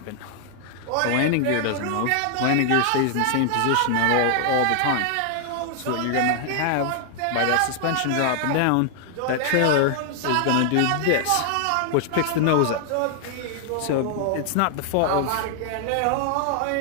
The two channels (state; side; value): different; both; correlation 0.00